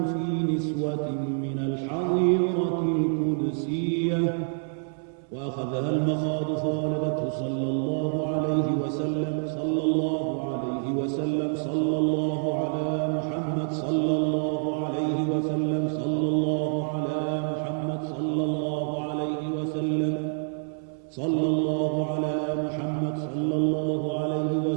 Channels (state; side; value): silent; left; 60 dB below the other